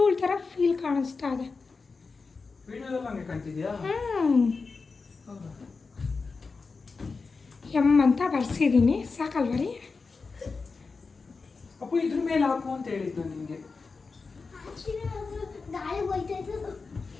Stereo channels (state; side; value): quieter; right; 4.4 dB